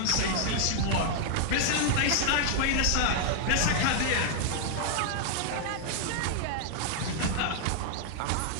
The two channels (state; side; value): different; both; correlation 0.00